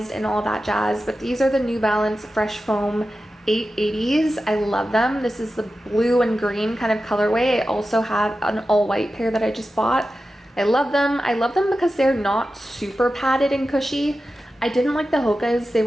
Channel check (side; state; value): both; normal; correlation 0.93